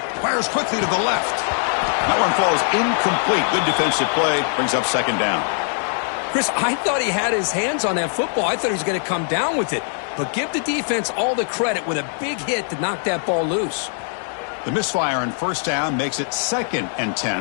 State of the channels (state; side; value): silent; right; digital silence